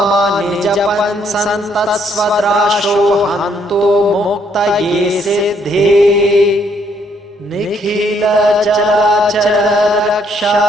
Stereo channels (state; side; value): normal; both; correlation 0.69